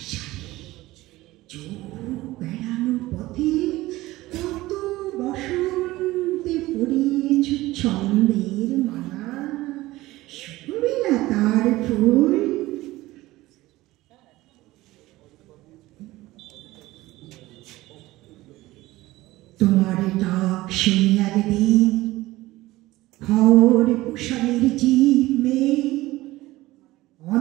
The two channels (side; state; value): left; quieter; 18.1 dB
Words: চোখ বেড়ানো পথে কত বসন্তে পড়িয়েছ ছন্দের মালা শুনবে না তার ফুল তোমার ডাক শুনি একদিন খড় কুশালের জীব মেয়ে